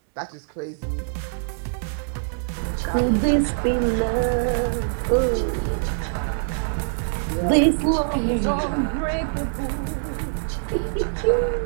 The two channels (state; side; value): silent; left; digital silence